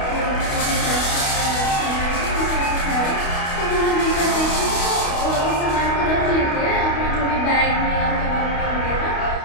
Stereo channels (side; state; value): right; late; 28 ms